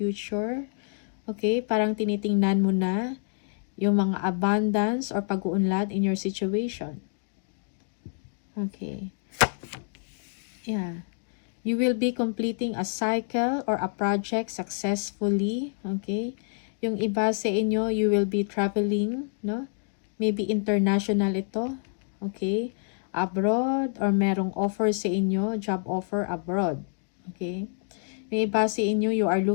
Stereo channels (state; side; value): silent; right; 60 dB below the other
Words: Okay? Parang tinitingnan mo na yung mga abundance or pag-uunlad in your situation. Okay. Yeah. You will be completing a cycle or a project successfully. Okay? Yung iba sa inyo, you will be traveling, no? Maybe international ito. Okay? Abroad or merong offer sa inyo, job offer abroad. Okay? Yung iba sa inyo, you are